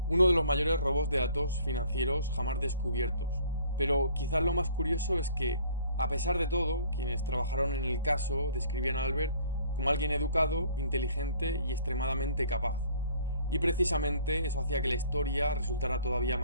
Uno de los mayores robos de datos financieros jamás descubiertos. Pero quizás lo más curioso es que, a pesar de todo, quienes trabajaron en el caso describían a Albert como alguien educado, inteligente y extremadamente capaz. Y precisamente eso hacía que la historia resultara todavía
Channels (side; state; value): both; inverted; correlation -0.55